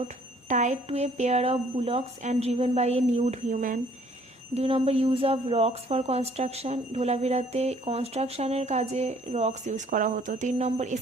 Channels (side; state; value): both; normal; correlation 0.60